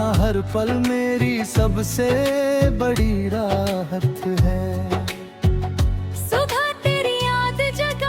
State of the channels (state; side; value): identical; both; correlation 1.00